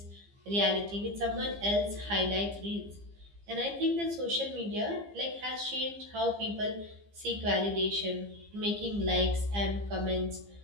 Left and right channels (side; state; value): left; late; 15 ms